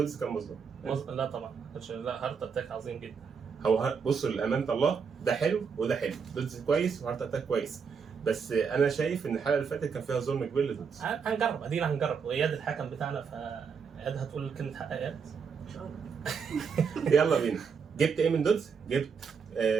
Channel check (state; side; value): quieter; left; 6.1 dB